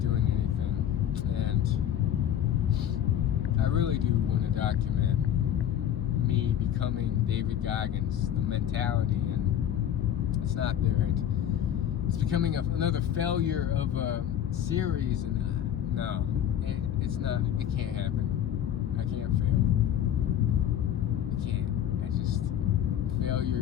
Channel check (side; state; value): right; quieter; 10.4 dB